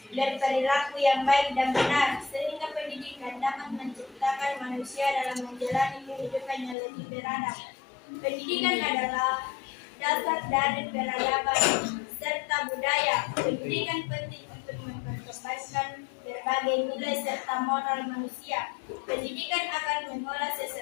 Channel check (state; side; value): drops out; right; at 6.8 s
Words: berperilaku yang baik dan benar, sehingga pendidikan dapat menciptakan manusia dalam menjalani kehidupan yang lebih beradab. Pendidikan adalah dasar dari peradaban serta budaya. Pendidikan penting untuk memperkembangkan berbagai nilai serta moral manusia. Pendidikan akan mengolah